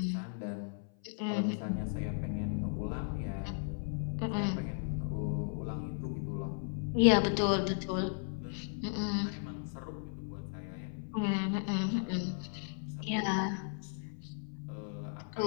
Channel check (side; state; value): right; silent; 54 dB below the other